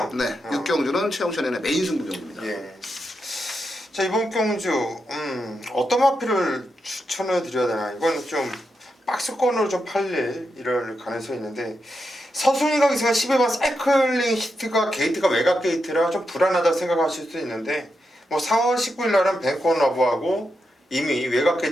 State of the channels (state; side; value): normal; both; correlation 0.85